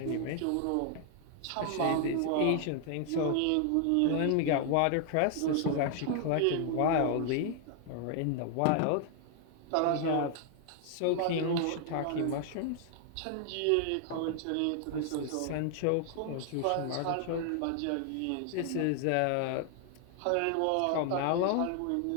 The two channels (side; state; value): both; different; correlation 0.00